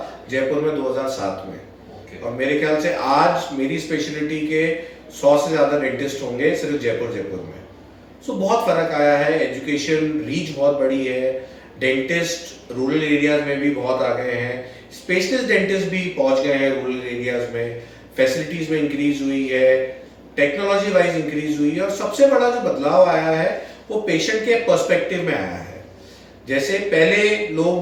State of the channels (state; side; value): identical; both; correlation 1.00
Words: जयपुर में 2007 में। और मेरे ख्याल से आज मेरी स्पेशलिटी के 100 से ज़्यादा डेंटिस्ट होंगे सिर्फ जयपुर में। सो बहुत फ़र्क आया है, एजुकेशन रीच बहुत बड़ी है, डेंटिस्ट रूरल एरियाज में भी बहुत आ गए हैं, स्पेशलिस्ट डेंटिस्ट भी पहुंच गए हैं रूरल एरियाज में, फैसिलिटीज़ में इंक्रीज हुई है, टेक्नोलॉजी वाइज इंक्रीज हुई है। और सबसे बड़ा जो बदलाव आया है वो पेशेंट के पर्सपेक्टिव में आया है। जैसे पहले